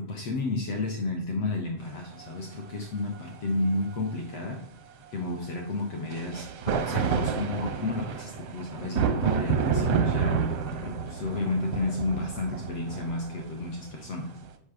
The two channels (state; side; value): late; right; 7.7 ms